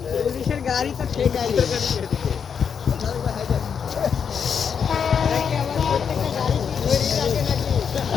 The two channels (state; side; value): quieter; right; 7.0 dB